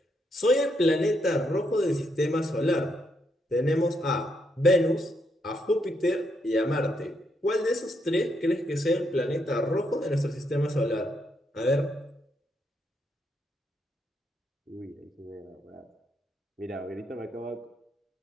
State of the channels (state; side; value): normal; both; correlation 0.78